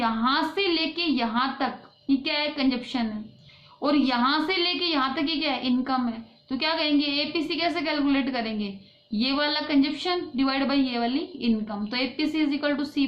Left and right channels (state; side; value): identical; both; correlation 1.00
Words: से लेके यहाँ तक ये क्या है, कंजप्शन है, और यहाँ से लेके यहाँ तक ये क्या है, इनकम है। तो क्या कहेंगे, एपीसी कैसे कैलकुलेट करेंगे, ये वाला कंजप्शन डिवाइड बाई ये वाली इनकम। तो APC is equal to C